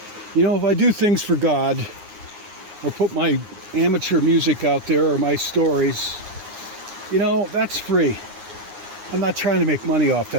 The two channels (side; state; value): left; late; 9.7 ms